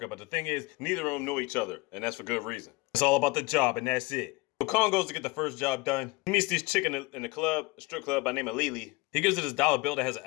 but the thing is, neither of them know each other. And that's for good reason. It's all about the job and that's it. So Kong goes to get the first job done. He meets this chick in the club, a strip club by the name of Lily. He gives her this dollar bill that has an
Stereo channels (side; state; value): right; quieter; 24.0 dB